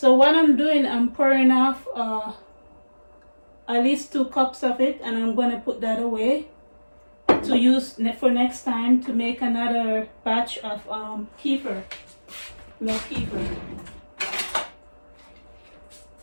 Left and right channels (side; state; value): both; inverted; correlation -1.00